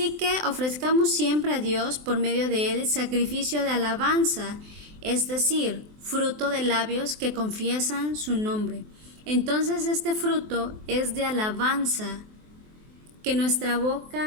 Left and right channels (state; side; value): late; left; 23 ms